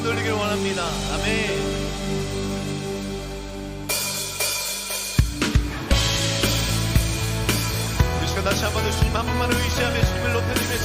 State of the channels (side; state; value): both; identical; correlation 1.00